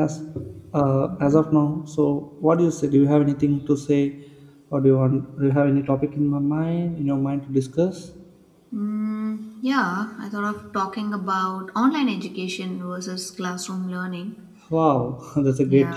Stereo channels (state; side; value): identical; both; correlation 1.00